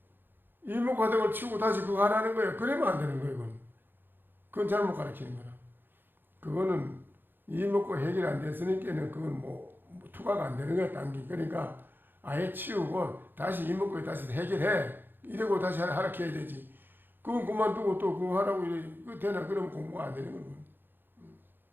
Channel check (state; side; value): late; left; 0.097 ms